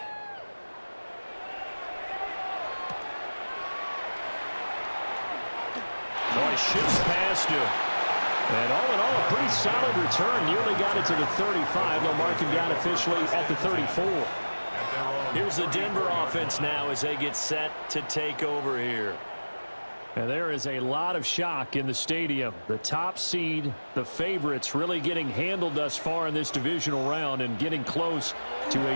Boy, shifts past him. And all in all, a pretty solid return. Nearly got it to the 35. They'll mark him down officially at the 34. Here's the Denver offense now as they get set to take over here. And there is a lot of shock in the stadium. The top seed, the favorites, really getting handled thus far in this divisional round and getting close to a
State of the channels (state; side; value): inverted; both; correlation -1.00